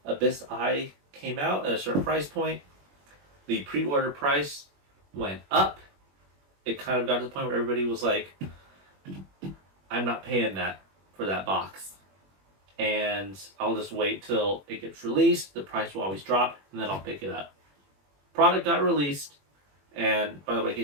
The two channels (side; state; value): left; late; 21 ms